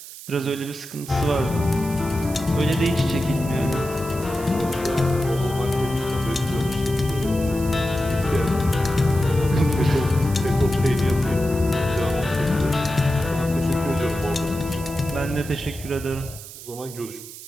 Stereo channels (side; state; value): right; noise; hiss, 14 dB below the sound